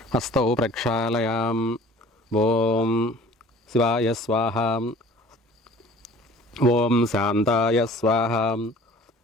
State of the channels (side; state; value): both; normal; correlation 0.47